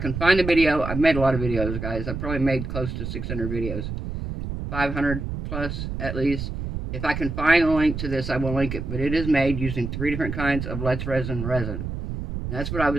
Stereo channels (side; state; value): right; noise; rumble, 5 dB below the sound